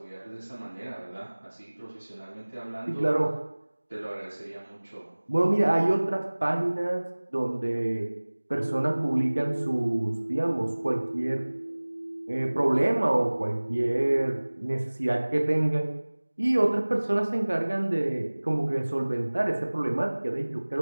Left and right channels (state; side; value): inverted; both; correlation -1.00